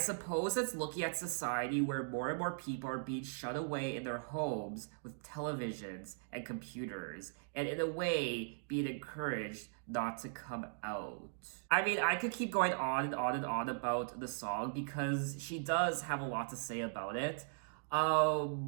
it's looking at society where more and more people are being shut away in their homes with televisions and computers, and in a way, being encouraged not to come out. I mean, I could keep going on and on and on about the song because she does have a lot to say about it.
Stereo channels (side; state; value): left; silent; digital silence